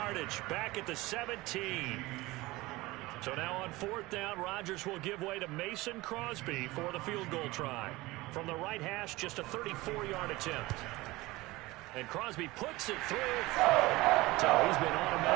back at the 17. So now on 4th down, Rodgers will give way to Mason Crosby for the field goal try. From the right hash, just a 34-yard attempt. And Crosby puts it through. So he's been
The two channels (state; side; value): quieter; left; 20.3 dB